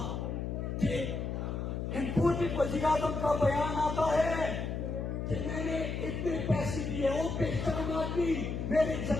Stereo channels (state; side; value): noise; left; hum, 3 dB below the sound